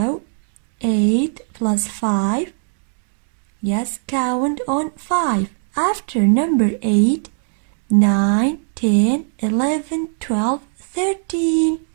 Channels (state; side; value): silent; left; digital silence